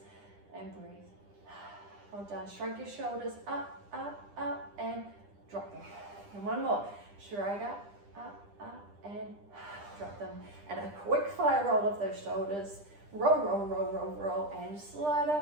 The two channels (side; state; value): left; late; 10 ms